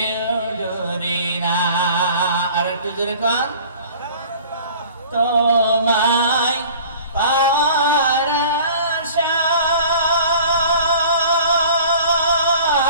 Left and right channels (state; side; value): inverted; both; correlation -0.46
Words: ডরে না। আর একটু জোরে কোন। তোমায় পাওয়ার আশায়